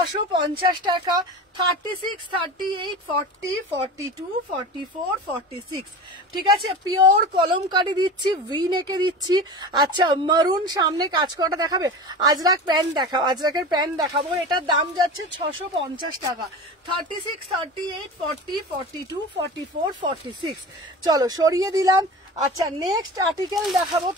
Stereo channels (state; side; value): normal; both; correlation 0.32